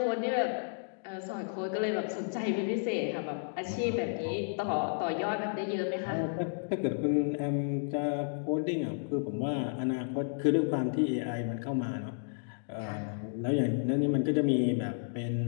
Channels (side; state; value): right; silent; digital silence